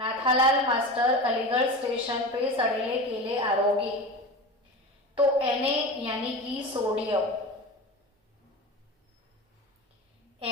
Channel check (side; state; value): both; normal; correlation 0.29